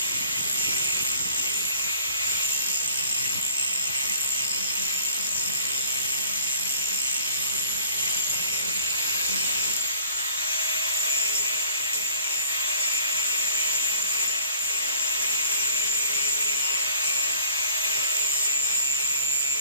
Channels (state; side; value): inverted; both; correlation -0.51